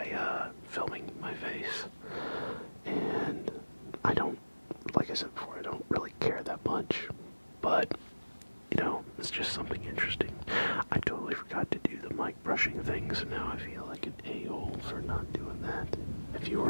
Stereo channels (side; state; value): both; inverted; correlation -1.00